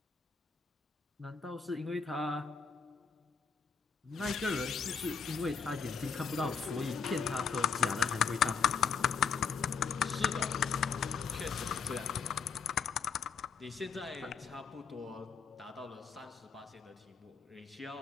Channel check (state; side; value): quieter; right; 6.1 dB